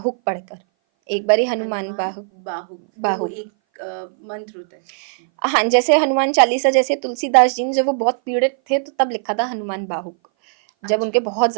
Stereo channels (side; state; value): left; silent; 60 dB below the other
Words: पढ़कर। एक बारी हनुमान हनुमान बाहुक, बाहुक, वो बाहुक। एक मंत्र होता है। हाँ, जैसे हनुमान चालीसा, जैसे तुलसीदास जी ने जब वो बहुत पीड़ित थे तो तब लिखा था हनुमान बाहुक। जब उनके अच्छा, बहुत